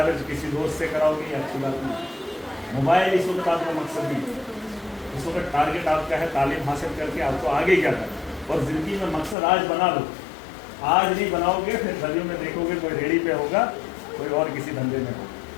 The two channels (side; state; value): right; drops out; at 9.3 s